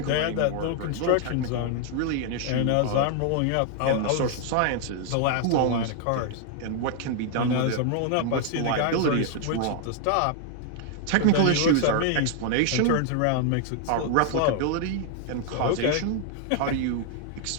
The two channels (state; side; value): different; both; correlation 0.00